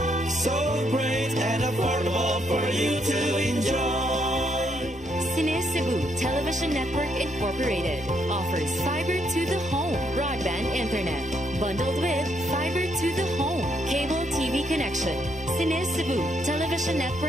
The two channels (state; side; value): normal; both; correlation 0.74